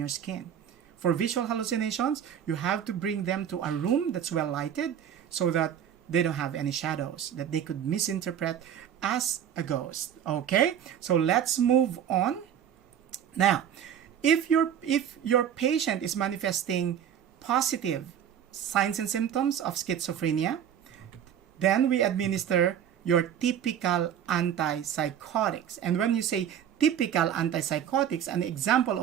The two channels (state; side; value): quieter; left; 9.2 dB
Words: skin. For visual hallucinations, you have to bring them to a room that's well lighted so that they don't have any shadows that they could misinterpret as a ghost. Okay? So let's move on. Now, if your patient is manifesting positive signs and symptoms of schizophrenia, then we administer your typical antipsychotics. And when you say typical antipsychotics, an example